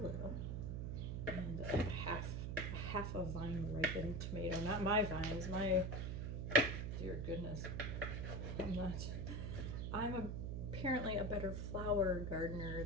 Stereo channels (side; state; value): right; noise; hum, 2 dB below the sound